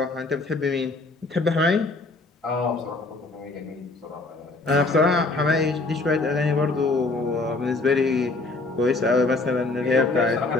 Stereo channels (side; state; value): right; quieter; 3.3 dB